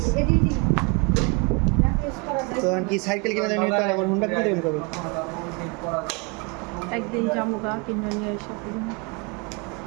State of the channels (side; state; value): left; quieter; 31.0 dB